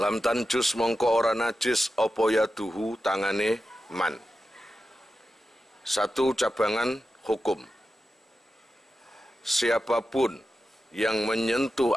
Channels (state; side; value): normal; both; correlation 0.91